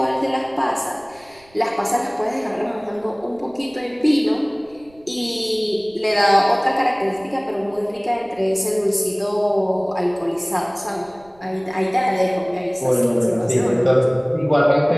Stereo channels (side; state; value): right; noise; rumble, 29 dB below the sound